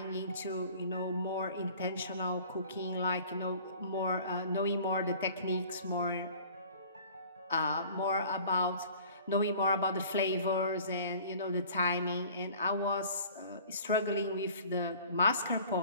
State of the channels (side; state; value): both; inverted; correlation -0.48